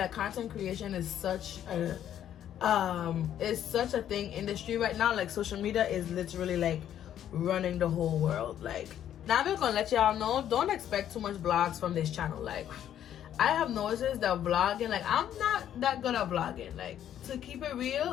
content creation is such a thing industry right now. Like social media is literally like running the whole world. Like, now I'm just gonna let y'all know, don't expect too much vlogs from this channel. Like, I have noticed that vlogging, like I'm not that good at vlogging. Like, to keep it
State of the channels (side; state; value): right; quieter; 10.6 dB